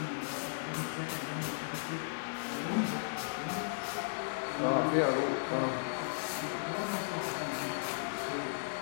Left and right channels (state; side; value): silent; right; 54 dB below the other